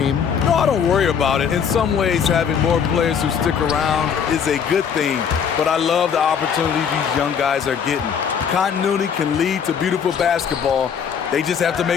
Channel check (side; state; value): right; quieter; 7.3 dB